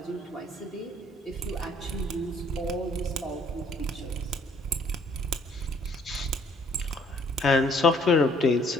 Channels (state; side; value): normal; both; correlation 0.62